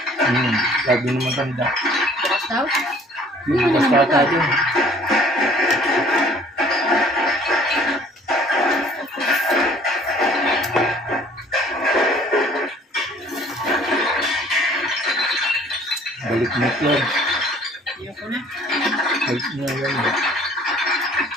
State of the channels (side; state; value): both; normal; correlation 0.54